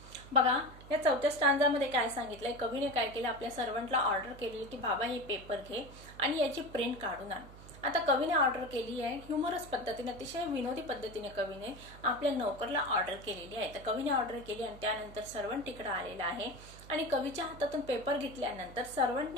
बघा या चौथ्या स्टांजामध्ये काय सांगितलंय, कवीने काय केलं, आपल्या सर्वंटला ऑर्डर केली की बाबा हे पेपर घे आणि याची प्रिंट काढून आण. आता कवीने ऑर्डर केली आहे ह्युमरस पद्धतीने, अतिशय विनोदी पद्धतीने कवीने आपल्या नोकरला ऑर्डर केलेली आहे. तर कवीने ऑर्डर केली आणि त्यानंतर सर्वंट तिकडे आलेला आहे आणि कवीच्या हातातून पेपर घेतल्यानंतर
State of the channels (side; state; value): right; noise; hum, 17 dB below the sound